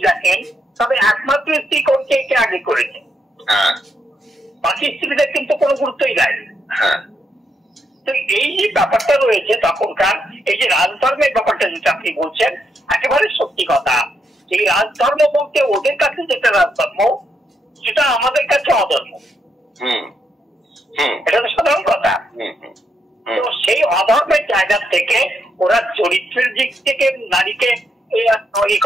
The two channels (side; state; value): both; normal; correlation 0.79